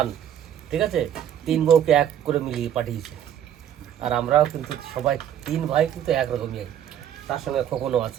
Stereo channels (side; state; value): left; quieter; 10.0 dB